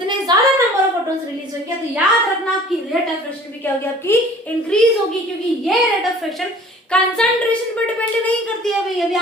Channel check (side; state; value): both; normal; correlation 0.49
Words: ज्यादा नंबर ऑफ फोटॉन्स रिलीज होंगे तो याद रखना आपकी रेट ऑफ फ्रिक्शन भी क्या होगी आपकी? इंक्रीज होगी, क्योंकि ये रेट ऑफ फ्रिक्शन कंसंट्रेशन पर डिपेंड नहीं करती है भाई। अभी